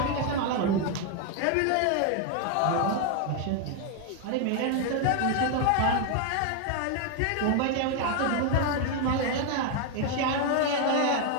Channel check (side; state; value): both; different; correlation 0.01